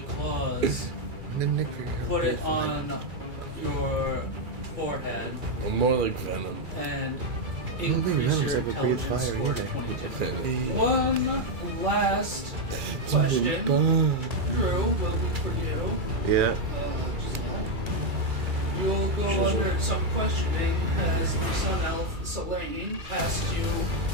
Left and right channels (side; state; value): left; late; 2.3 ms